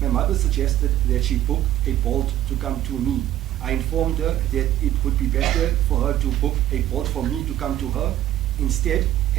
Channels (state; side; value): quieter; left; 12.8 dB